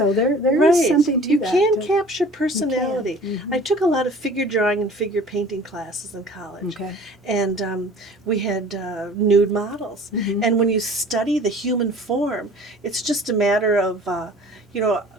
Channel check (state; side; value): normal; both; correlation 0.47